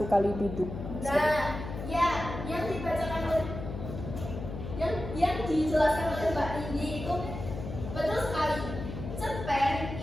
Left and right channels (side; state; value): left; noise; hum, 8 dB below the sound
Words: kali duduk. Nah, ya, yang dibacakan oleh yang dijelaskan oleh Mbak Nindi itu betul sekali. Cerpen